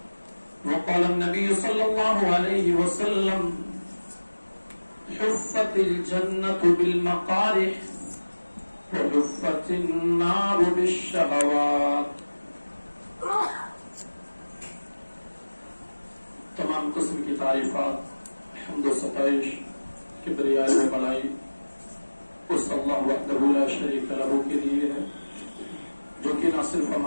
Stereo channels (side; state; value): both; inverted; correlation -1.00